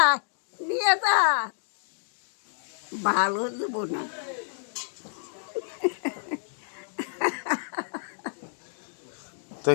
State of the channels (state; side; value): silent; right; digital silence